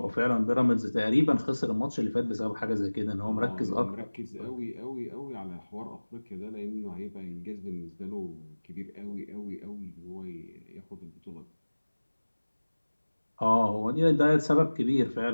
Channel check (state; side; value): inverted; both; correlation -1.00